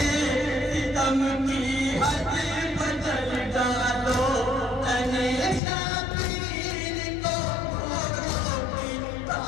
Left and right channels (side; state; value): right; drops out; at 5.6 s